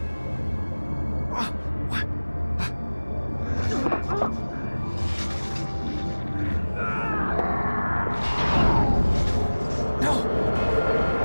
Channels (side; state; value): both; inverted; correlation -1.00